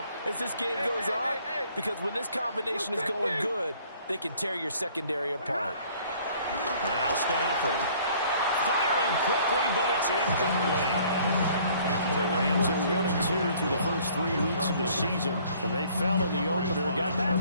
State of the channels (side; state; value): both; inverted; correlation -0.57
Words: as this game goes on, because when this combination is going good, they can tear your secondary apart. Now Stafford. Firing quickly, but it's incomplete. The Rams are 1-2 through the first 3 weeks of the season, and they fell in the opener. Got